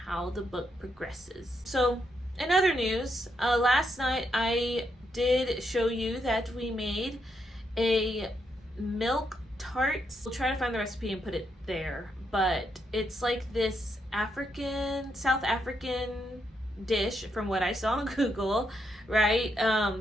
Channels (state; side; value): normal; both; correlation 0.80